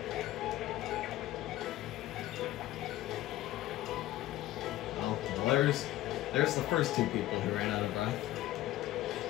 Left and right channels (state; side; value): quieter; right; 15.0 dB